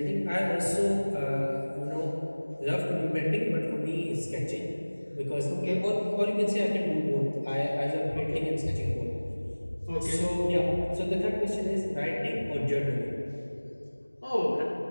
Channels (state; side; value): inverted; both; correlation -1.00